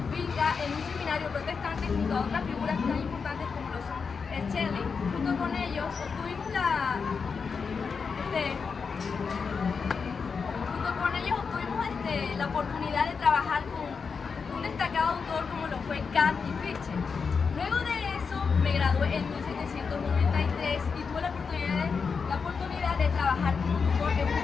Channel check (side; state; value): right; quieter; 5.5 dB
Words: en un seminario protestante junto a otras figuras tan importantes como lo son Shelley. Junto con ellos obtuvimos la oportunidad de trabajar con un destacado autor como lo fue Kant y Fichte. Luego de eso me gradué en 1793 y tuve la oportunidad de trabajar como tutor en